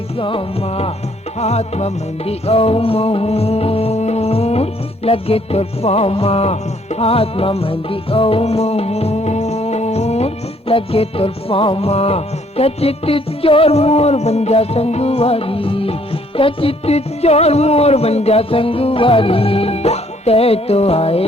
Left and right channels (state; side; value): normal; both; correlation 0.64